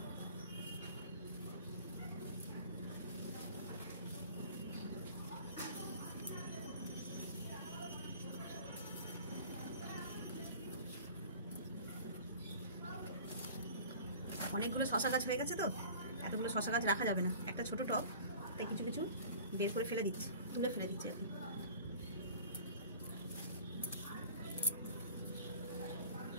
অনেকগুলো শশা গাছ হয়ে গেছে তো, এতগুলো শশা গাছ রাখা যাবে না, একটা ছোট টব, তাই কিছু কিছু বের করে ফেলে দিচ্ছি, তুলে ফেলে দিচ্ছি এখন।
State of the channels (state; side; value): inverted; both; correlation -0.44